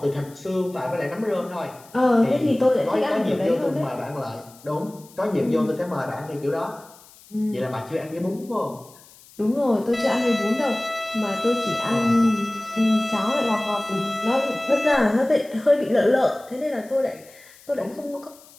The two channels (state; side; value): noise; left; hiss, 24 dB below the sound